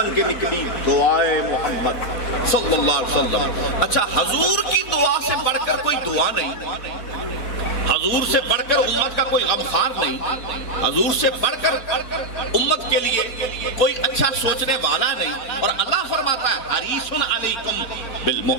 کے نکلی دعائے محمد صلی اللہ علیہ وسلم۔ اچھا، حضور کی دعا سے بڑھ کر کوئی دعا نہیں، حضور سے بڑھ کر امت کا کوئی غمخوار نہیں، حضور سے بڑھ کر امت کے لیے کوئی اچھا سوچنے والا نہیں، اور اللہ فرماتا ہے حریص علیکم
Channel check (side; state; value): right; late; 4.3 ms